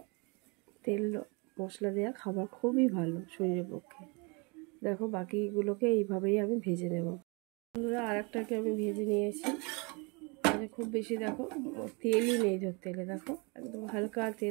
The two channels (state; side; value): quieter; left; 30.2 dB